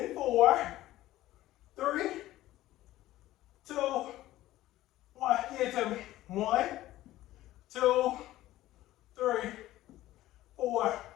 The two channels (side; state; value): right; quieter; 15.4 dB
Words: 4, 3, 2, 1. Give it to me. 1, 2, 3, 4,